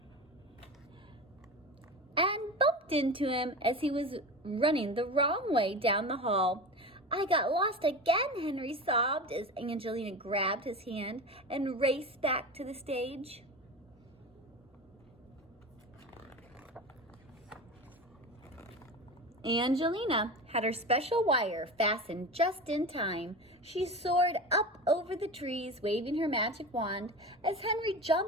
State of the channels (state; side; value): normal; both; correlation 0.28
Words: and bumped into him as he was running the wrong way down the hall. "I got lost again," Henry sobbed as Angelina grabbed his hand and raced back to the stage. Angelina had her special wire fastened just in time. She soared up over the trees, waving her magic wand, as Henry